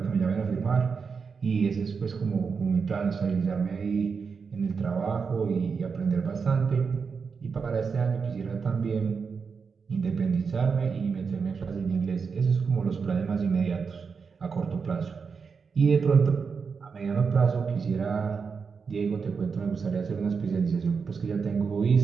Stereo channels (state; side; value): quieter; left; 5.5 dB